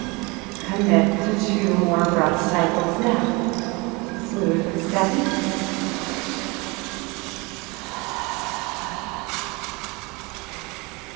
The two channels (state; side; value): quieter; left; 26.7 dB